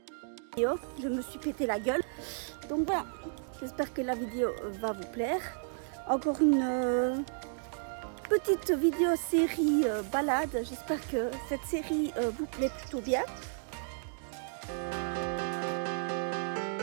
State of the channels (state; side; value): silent; left; digital silence